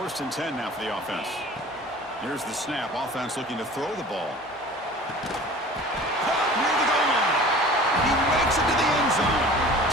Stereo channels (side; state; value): both; normal; correlation 0.43